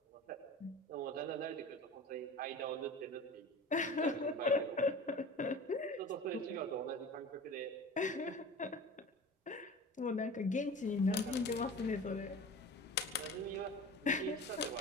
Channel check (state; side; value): normal; both; correlation 0.36